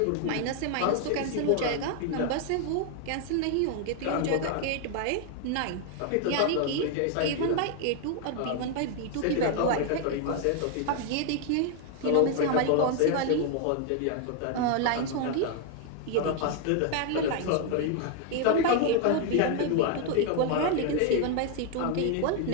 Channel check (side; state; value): both; different; correlation 0.00